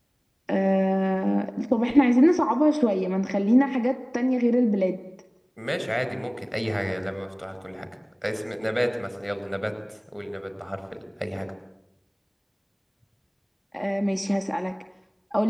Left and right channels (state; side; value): identical; both; correlation 1.00